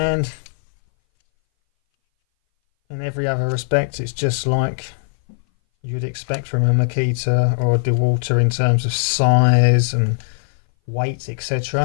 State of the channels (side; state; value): right; silent; 60 dB below the other